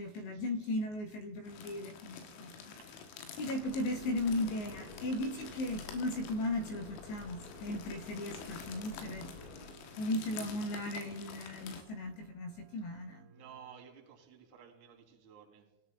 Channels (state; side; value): late; right; 19 ms